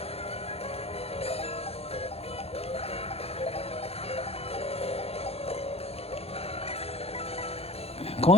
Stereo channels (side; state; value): right; late; 0.29 ms